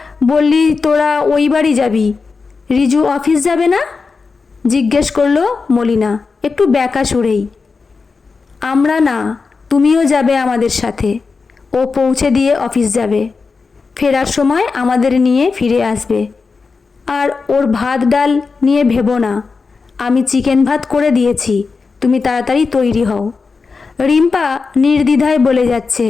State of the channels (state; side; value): quieter; right; 4.6 dB